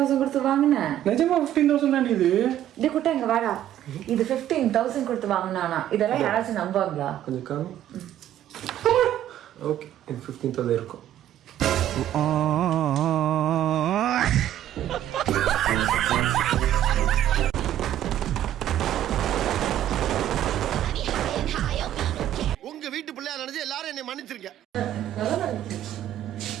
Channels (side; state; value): left; quieter; 11.9 dB